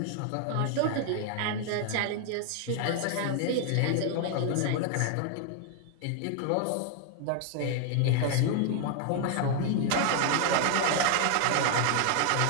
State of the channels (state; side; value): different; both; correlation 0.00